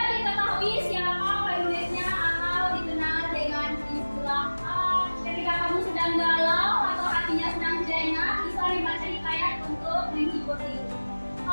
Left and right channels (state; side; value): inverted; both; correlation -1.00